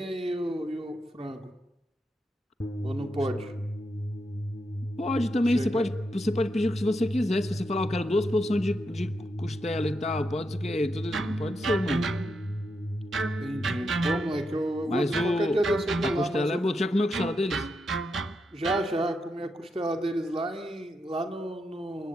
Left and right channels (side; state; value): both; normal; correlation 0.84